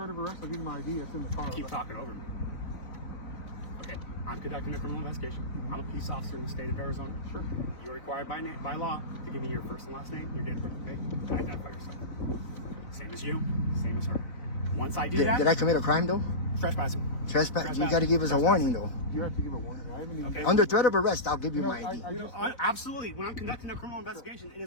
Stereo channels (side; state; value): right; late; 4.0 ms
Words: of arrest, I'll give you my ID. It's in the car. Keep talking over me. Okay, I'm conducting a criminal investigation. I'm a police officer in the state of Arizona. Sure. You're required by law to give me your first and last name, your date of birth, okay? To identify yourself. Same as you, same as her. Once I do that... Did I commit a crime, though? Trespassing. Trespass? You got to give us a warning, though. You have to give a warning. I haven't even... Okay. Under threat of arrest, I'll give you my ID. Absolutely. When I'm conducting a criminal investigation, it